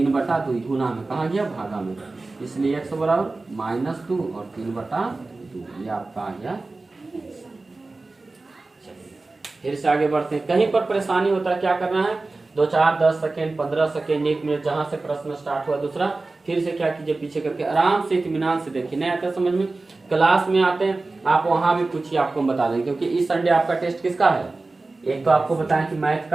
गुना में कहाँ गया भागा में, इसलिए x बराबर -2 और 3/2, ये आपका आ गया। फिर से आगे बढ़ते हैं, कहीं पर परेशानी होता है क्या करना है, 2 4 10 सेकेंड 15 सेकेंड 1 मिनट जहां से प्रश्न स्टार्ट हुआ दूसरा, फिर से क्या कीजिए पीछे करके आराम से इत्मीनान से देखिए, नहीं आता समझ में क्लास में आते हैं आप वहां भी पूछिए, आपको हम बता देंगे, क्योंकि इस संडे आपका टेस्ट किसका है, एक तो आपको बताएं कि मैथ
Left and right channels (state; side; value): quieter; left; 3.4 dB